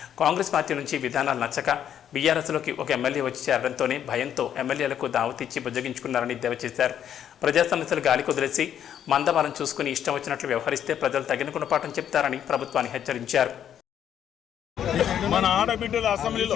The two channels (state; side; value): quieter; right; 9.7 dB